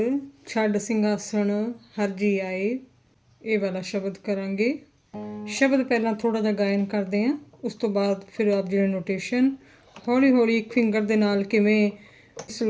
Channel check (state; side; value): identical; both; correlation 1.00